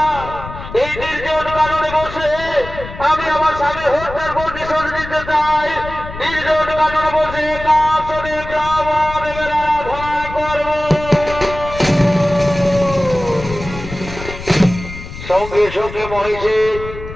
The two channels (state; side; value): noise; left; rumble, 11 dB below the sound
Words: এই নির্জন কারণে বসে আমি আমার স্বামী হত্যার প্রতিশোধ নিতে চাই। নির্জন কারণে বসে কাশনে ব্রাহ্মণ আরাধনা করব। সঙ্গে সঙ্গে মহিষে